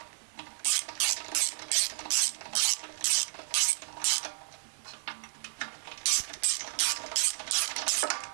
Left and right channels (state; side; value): silent; left; 57 dB below the other